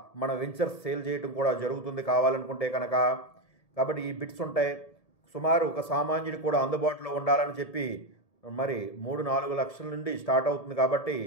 మన వెంచర్స్ సేల్ చేయడం కూడా జరుగుతుంది కావాలనుకుంటే కనుక. కాబట్టి ఈ బిట్స్ ఉంటాయి. సుమారు ఒక సామాన్యుడు కూడా అందుబాటులో ఉండాలని చెప్పి మరి 3-4 లక్షల నుండి స్టార్ట్ అవుతుంది. కాబట్టి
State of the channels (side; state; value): right; late; 1.7 ms